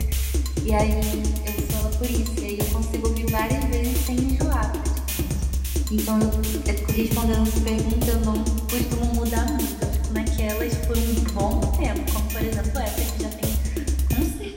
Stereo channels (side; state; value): both; identical; correlation 1.00